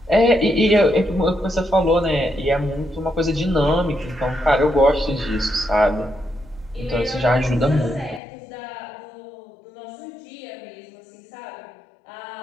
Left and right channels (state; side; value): drops out; right; at 8.2 s